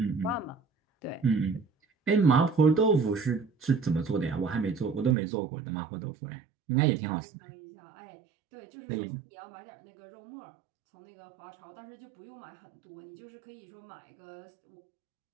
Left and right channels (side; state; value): left; drops out; at 5.2 s